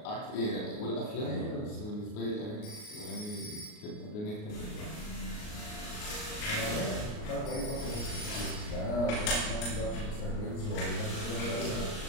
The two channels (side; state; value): right; late; 38 ms